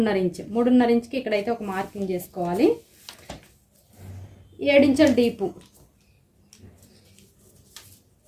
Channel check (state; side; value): identical; both; correlation 1.00